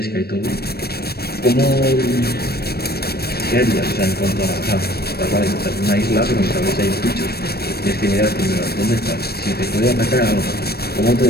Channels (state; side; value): late; right; 0.46 ms